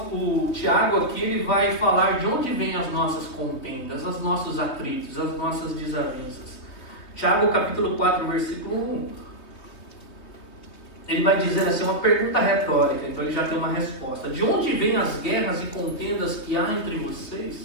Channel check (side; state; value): right; late; 3.2 ms